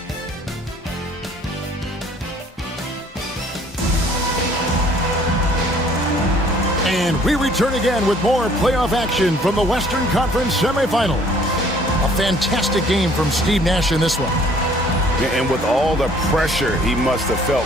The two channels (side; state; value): both; normal; correlation 0.58